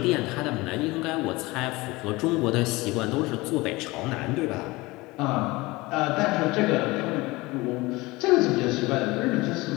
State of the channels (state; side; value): quieter; right; 21.8 dB